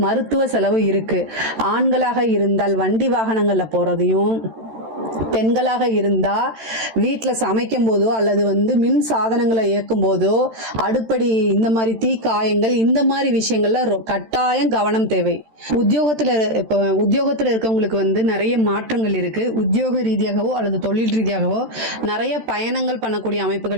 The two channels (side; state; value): left; late; 13 ms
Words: மருத்துவ செலவு இருக்கு. ஆண்களாக இருந்தால் வண்டி வாகனங்கள்ல போறதையும், பெண்களாக இருந்தா வீட்டில் சமைக்கும் போதோ அல்லது மின் சாதனங்களை இயக்கும் போதோ அடுப்படி இந்த மாதிரி தீ காயங்கள் இந்த மாதிரி விஷயங்கள்ல கட்டாயம் கவனம் தேவை. உத்தியோகத்துல இருக்கவங்களுக்கு நிறைய மாற்றங்கள் இருக்கு. உத்தியோக ரீதியாகவோ அல்லது தொழில் ரீதியாகவோ நிறைய பயணங்கள் பண்ணக்கூடிய